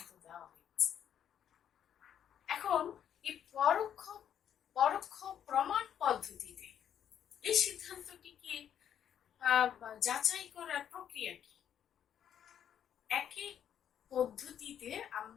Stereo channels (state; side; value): quieter; right; 9.3 dB